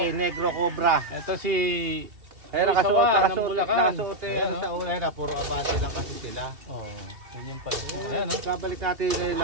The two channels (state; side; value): late; left; 2.8 ms